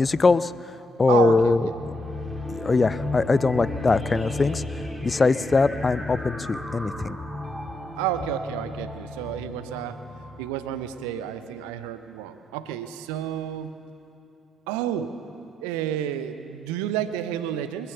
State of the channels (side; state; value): both; normal; correlation 0.78